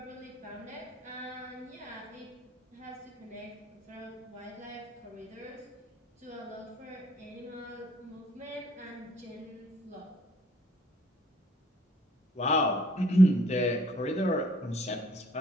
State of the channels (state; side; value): normal; both; correlation 0.59